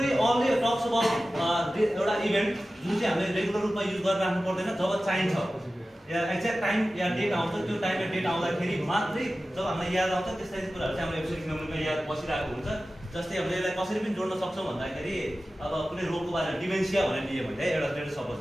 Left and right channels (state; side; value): normal; both; correlation 0.95